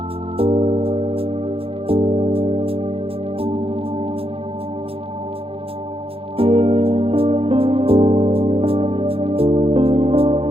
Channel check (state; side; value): late; left; 0.27 ms